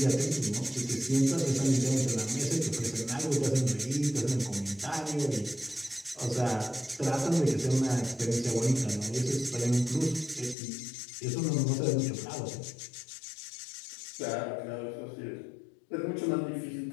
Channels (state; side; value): drops out; right; at 10.6 s